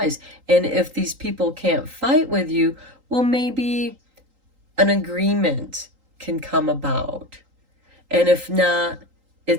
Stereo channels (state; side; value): late; left; 3.8 ms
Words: And if these people can't fight with you, well, maybe an agreement can come about. And if not,